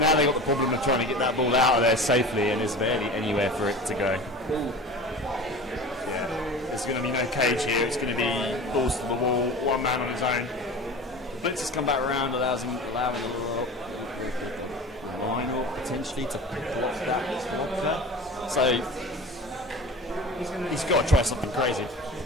they've got the problem of trying to get that ball out of there safely, and there's barely anywhere for it to go. Yeah. There's going to be no cage here, it's going to be balls to the wall, one man on his own. Blitz has come back around, allowing a little line or potentially to block that. So he's got to try something crazy.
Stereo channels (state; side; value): normal; both; correlation 0.36